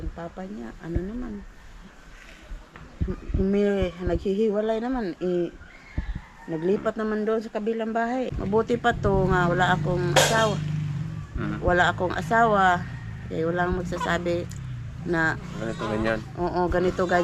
papa niya. Naghihiwalay naman. Naglipat naman doon sa kabilang bahay. Mabuti pa to nga wala akong asawa. Kaya walang magsasabi na Ganito, ganyan. Oo, ganito,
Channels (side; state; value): both; identical; correlation 1.00